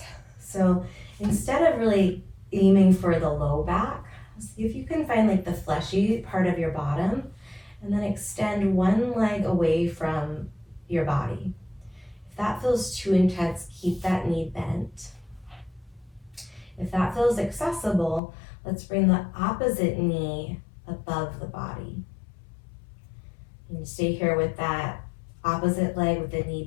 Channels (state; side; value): drops out; right; at 18.2 s